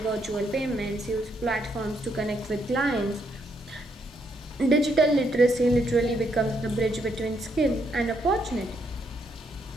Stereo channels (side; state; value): both; normal; correlation 0.75